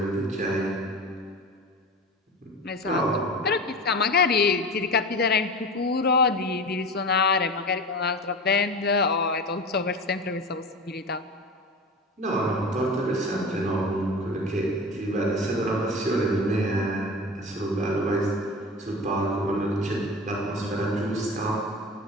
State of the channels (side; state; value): both; normal; correlation 0.31